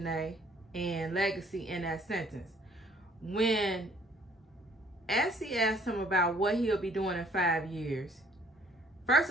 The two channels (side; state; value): both; normal; correlation 0.60